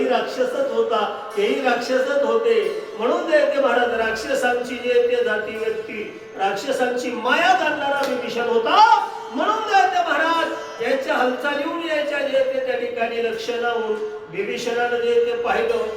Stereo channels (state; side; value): identical; both; correlation 1.00